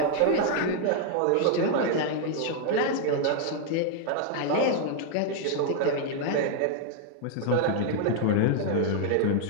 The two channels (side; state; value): both; different; correlation 0.00